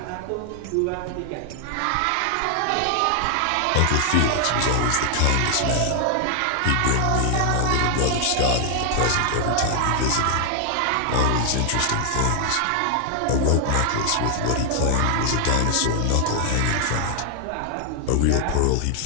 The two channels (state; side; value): different; both; correlation 0.00